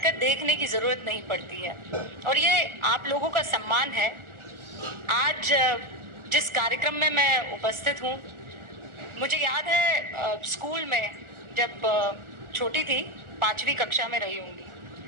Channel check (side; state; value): left; late; 1.4 ms